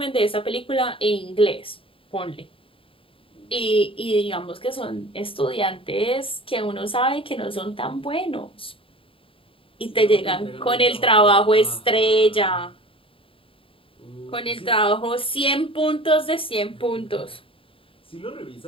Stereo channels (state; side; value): late; right; 0.26 ms